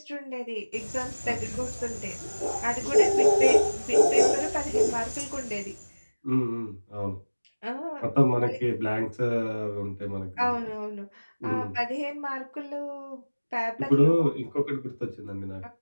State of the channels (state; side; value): inverted; both; correlation -1.00